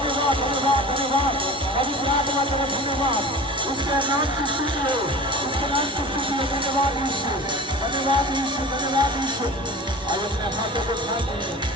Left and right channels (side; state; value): both; normal; correlation 0.37